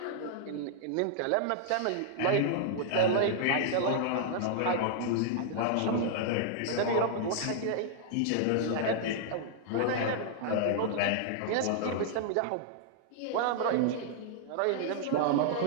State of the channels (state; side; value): different; both; correlation -0.01